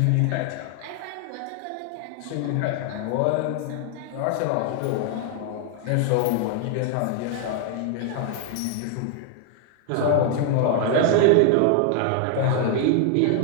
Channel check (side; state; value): both; different; correlation 0.00